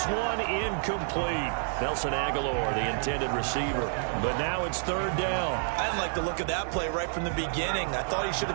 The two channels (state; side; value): silent; left; digital silence